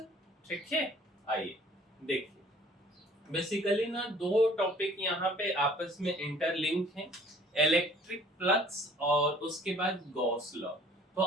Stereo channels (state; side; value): normal; both; correlation 0.54